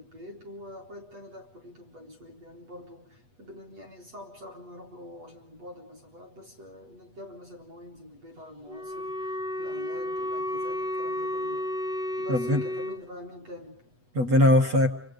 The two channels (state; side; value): late; left; 8.2 ms